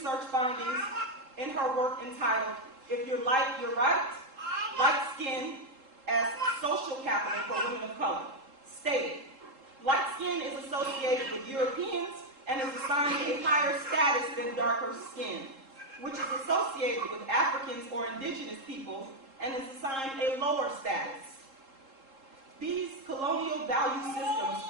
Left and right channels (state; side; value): late; left; 3.7 ms